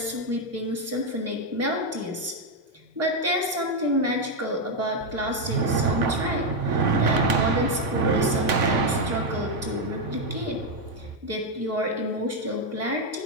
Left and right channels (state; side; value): normal; both; correlation 0.03